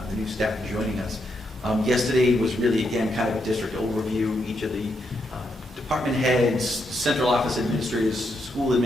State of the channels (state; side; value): normal; both; correlation 0.80